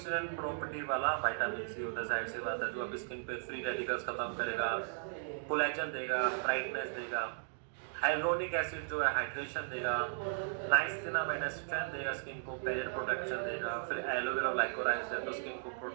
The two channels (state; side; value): silent; left; digital silence